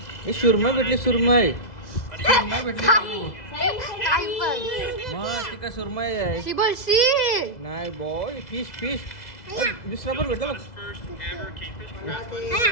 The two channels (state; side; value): late; right; 2.0 ms